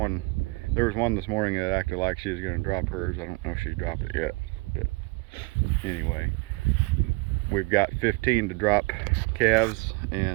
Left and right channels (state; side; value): quieter; left; 26.9 dB